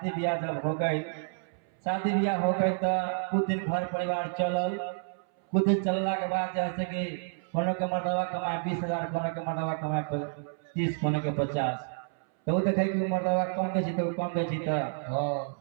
ब्याह जब हो गई, शादी ब्याह हो गई तो कुछ दिन घर परिवार चलल। कुछ दिन चलला के बाद जैसे कि कोनो के मर्दवा कमाए 20,000, कोनो के मर्दवा कमाए 30, कोनो के 50। तो वो देखे कि मर्दवा कम दे तो कम दे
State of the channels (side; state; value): left; silent; 58 dB below the other